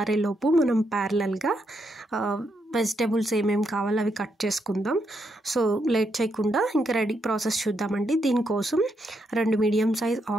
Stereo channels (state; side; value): normal; both; correlation 0.80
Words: మనం ప్యారలల్గా వెజిటేబుల్స్ ఏమేమి కావాలో అవి కట్ చేసుకుందాం. సో లేట్ చేయకుండా ఇంకా రెడీ ప్రాసెస్ చూద్దామండి. దీనికోసం 2 మీడియం సైజ్